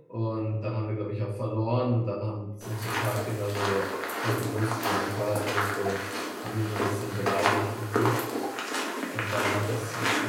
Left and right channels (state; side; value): identical; both; correlation 1.00